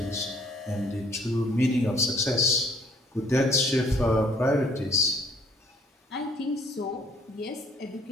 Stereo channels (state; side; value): normal; both; correlation 0.60